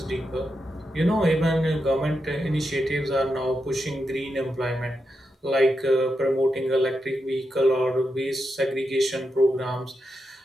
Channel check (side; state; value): both; normal; correlation 0.86